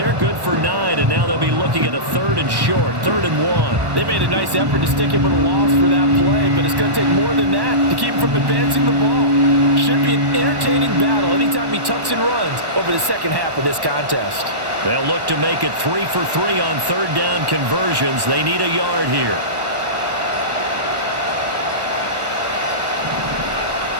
good for 9, and now they'll be looking at a 3rd and short, 3rd and 1. They made a nice effort to stick him with a loss for that play, but it's going to take more than that to keep him from advancing the ball. Should be an entertaining battle anytime he tucks and runs over the second half of this contest. They'll look to make it 3 for 3 on 3rd down conversions. They need a yard here.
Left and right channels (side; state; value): left; late; 1.1 ms